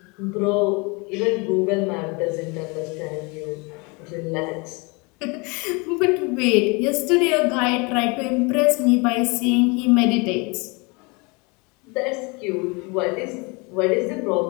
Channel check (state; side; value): quieter; right; 28.9 dB